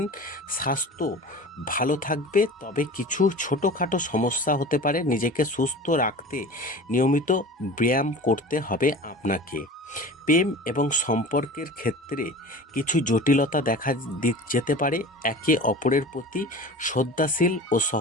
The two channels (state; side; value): normal; both; correlation 0.37